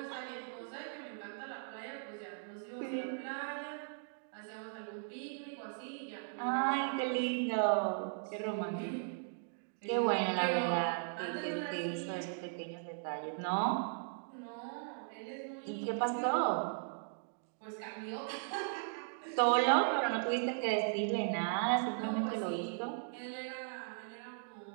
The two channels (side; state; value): left; silent; digital silence